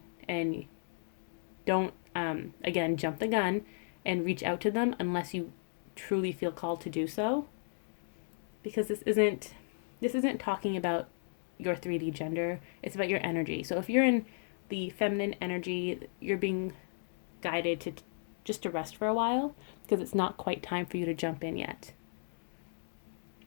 and don't, again, jump the gun and reach out to them unless you truly feel called to do so. Because this isn't talking about your 3D gender. It's about your energy. So if you're in the feminine energy, you're being guided to just to rest for a while because it's not quite time for you to jump in yet.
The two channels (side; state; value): right; silent; digital silence